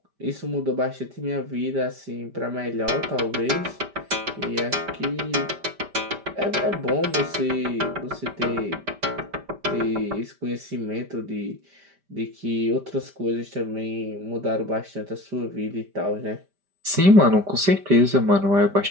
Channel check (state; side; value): late; left; 5.1 ms